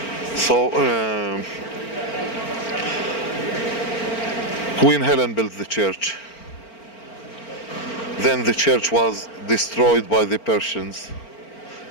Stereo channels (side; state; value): right; late; 4.4 ms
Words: So Queen Helen built the church. Then the church was destroyed by the Persians.